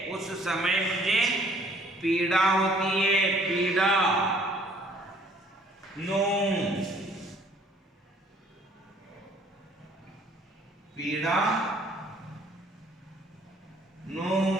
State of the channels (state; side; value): normal; both; correlation 0.59